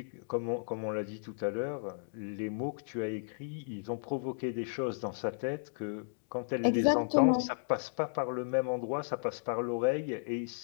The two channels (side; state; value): right; silent; digital silence